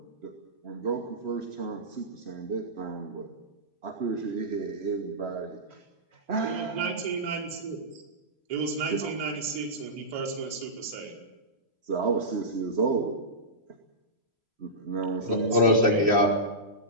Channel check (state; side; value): late; left; 3.0 ms